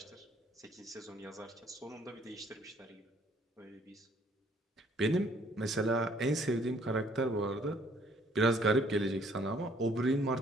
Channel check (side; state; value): both; normal; correlation 0.62